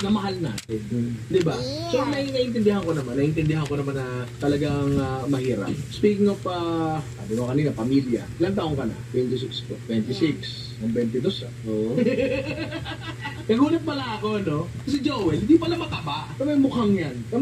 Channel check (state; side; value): identical; both; correlation 1.00